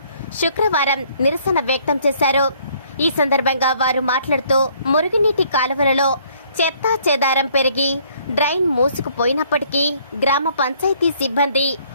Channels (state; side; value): inverted; both; correlation -0.62